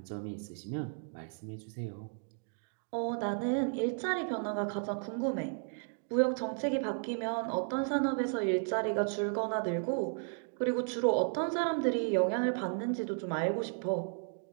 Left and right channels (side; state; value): left; silent; 55 dB below the other